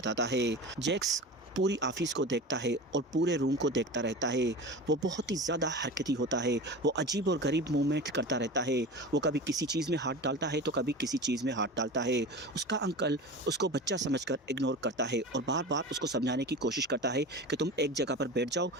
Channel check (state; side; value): normal; both; correlation 0.31